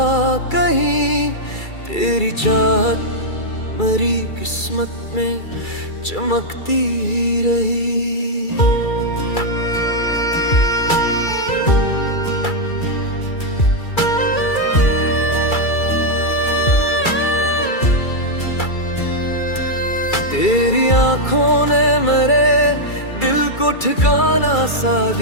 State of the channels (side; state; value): right; late; 2.3 ms